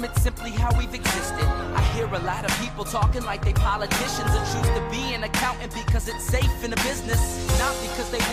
it's simply how we've existed. I hear a lot of people talking like they politicians and choose to be an accountant because it's safe in the business. Not because they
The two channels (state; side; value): identical; both; correlation 1.00